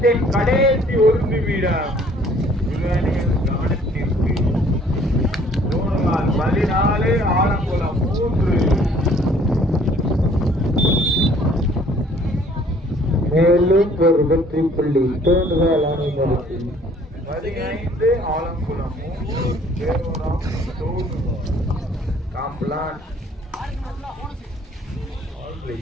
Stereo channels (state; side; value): normal; both; correlation 0.57